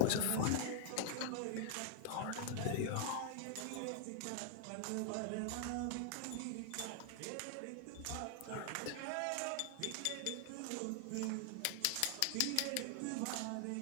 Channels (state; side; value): different; both; correlation -0.01